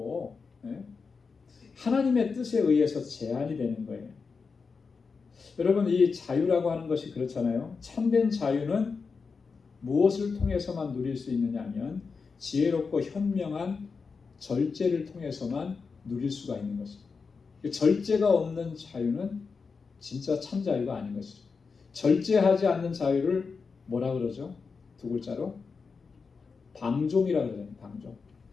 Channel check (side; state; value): right; quieter; 5.0 dB